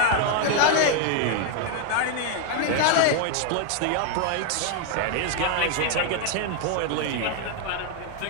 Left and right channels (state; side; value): different; both; correlation 0.00